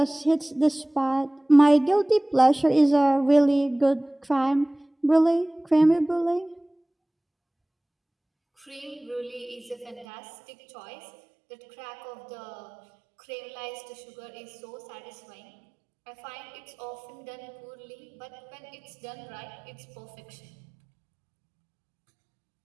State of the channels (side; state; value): left; drops out; at 10.1 s